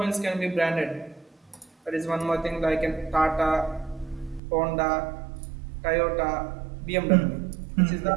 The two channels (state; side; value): drops out; left; at 4.4 s